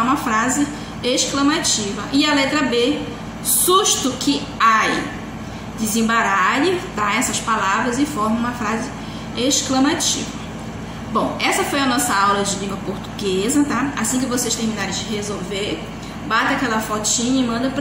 uma frase exclamativa. E a letra B, susto que ai. Desembaralhe, tá, essas palavras e forme uma frase exclamativa. Bom, essa foi a nossa aula de língua portuguesa, tá? Assim que vocês terminarem de resolver, bata aquela fotinha e manda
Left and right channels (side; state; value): both; identical; correlation 1.00